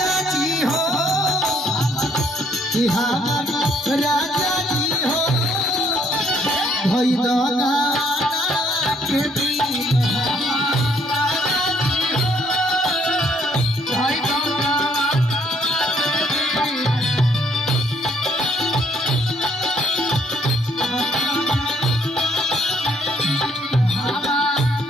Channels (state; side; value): normal; both; correlation 0.66